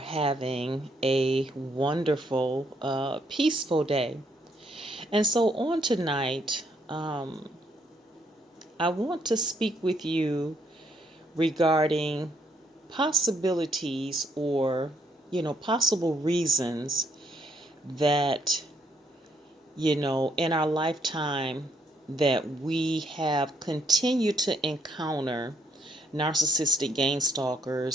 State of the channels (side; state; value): both; normal; correlation 0.71